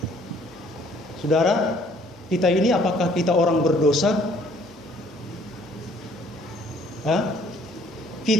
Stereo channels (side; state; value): both; normal; correlation 0.60